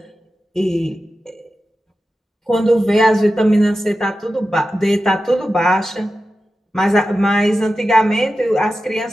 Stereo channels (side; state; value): both; normal; correlation 0.92